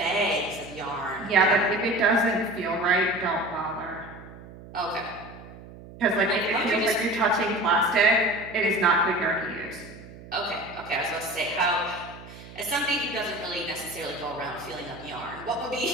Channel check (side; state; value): right; noise; hum, 17 dB below the sound